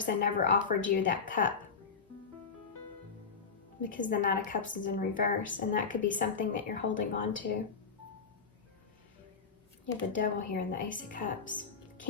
never offered you that cup because the Knight of Cups is in reverse, and that could be something that you're holding on to. You have the Devil here and the Ace of Cups.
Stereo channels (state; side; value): quieter; right; 5.4 dB